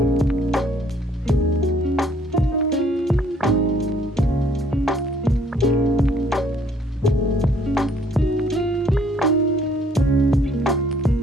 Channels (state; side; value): normal; both; correlation 0.61